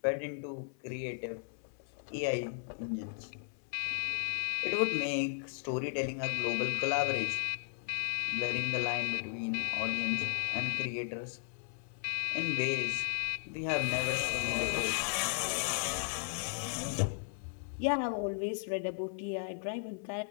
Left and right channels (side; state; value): right; silent; 54 dB below the other